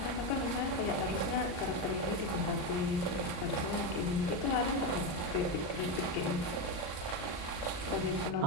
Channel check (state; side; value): late; right; 39 ms